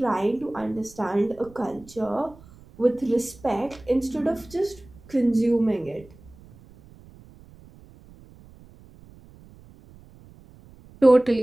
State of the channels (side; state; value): right; noise; rumble, 23 dB below the sound